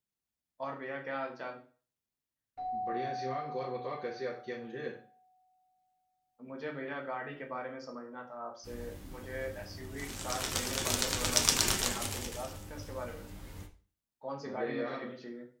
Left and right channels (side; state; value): both; identical; correlation 1.00